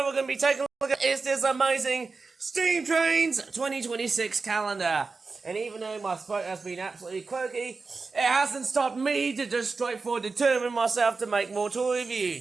we're going to be taking a look at is this amazing Steam Trains 2026 calendar. And even though my throat has been absolutely croaky, it hasn't stopped me to just straightforward determine myself to make more toy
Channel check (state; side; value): quieter; left; 4.2 dB